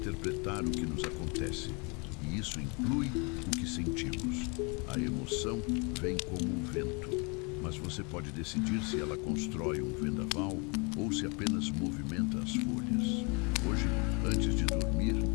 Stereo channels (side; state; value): right; quieter; 31.8 dB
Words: o que nos acontece. E isso inclui o que sentimos. A emoção vem como um vento, mas você pode decidir se ela constrói um vendaval ou se apenas movimenta as folhas. Hoje, antes de dormir,